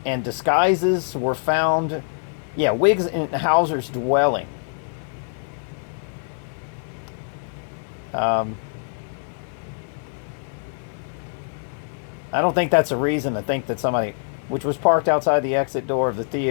disguises were found. Yeah, Wiggs in Hauser's dwelling. I don't think that's a reason to think that somebody, which was parked outside the exit door of the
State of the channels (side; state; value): right; silent; digital silence